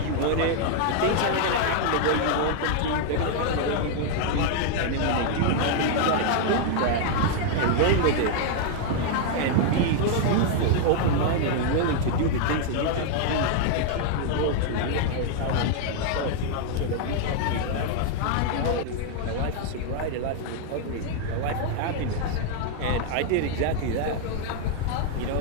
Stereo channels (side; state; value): both; different; correlation 0.00